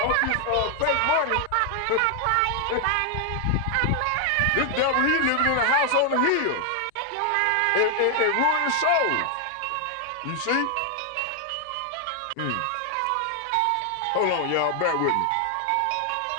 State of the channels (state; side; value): different; both; correlation 0.00